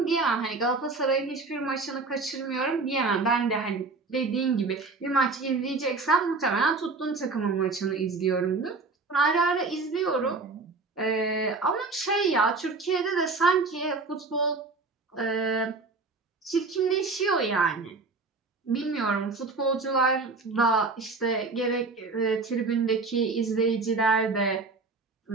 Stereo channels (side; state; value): left; quieter; 3.9 dB